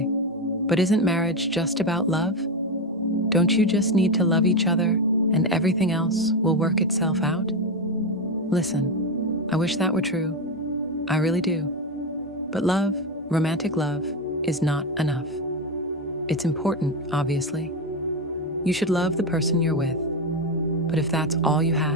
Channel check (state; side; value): normal; both; correlation 0.13